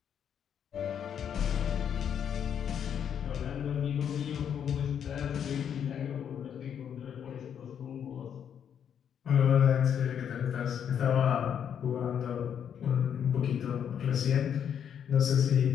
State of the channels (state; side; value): quieter; right; 8.5 dB